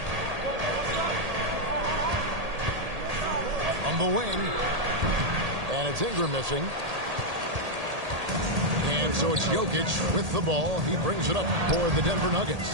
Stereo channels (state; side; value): late; left; 1.8 ms